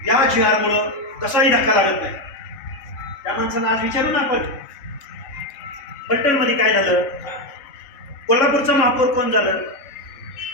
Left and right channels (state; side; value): late; right; 3.7 ms